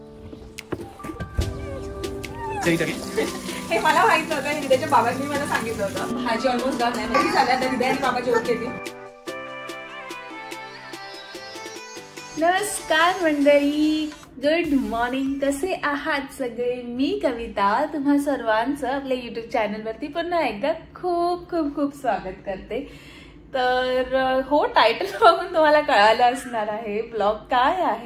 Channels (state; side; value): identical; both; correlation 1.00